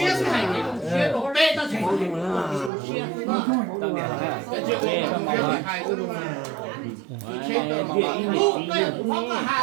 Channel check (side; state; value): left; drops out; at 2.7 s